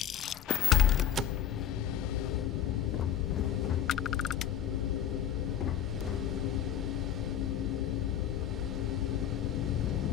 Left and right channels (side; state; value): right; quieter; 10.0 dB